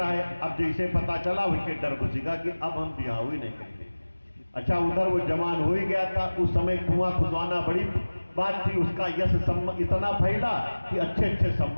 है। अब जैसे पता चला उसके डर घुसेगा कि अब हम ब्याह ही नहीं करेंगे। अच्छा उधर वो जवान हो ही गया था। उस समय कुआं खुदवाना बड़ी बात थी। उसका यश इतना फैला कि अच्छे अच्छे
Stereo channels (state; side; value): inverted; both; correlation -1.00